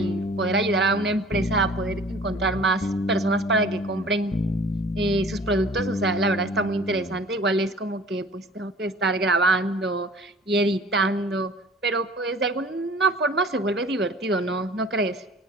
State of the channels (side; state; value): both; normal; correlation 0.48